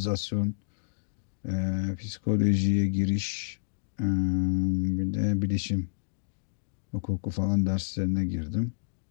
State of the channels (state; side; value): silent; right; digital silence